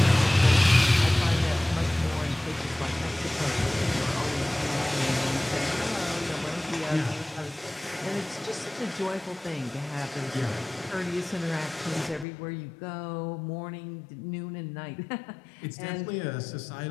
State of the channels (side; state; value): right; drops out; at 12.2 s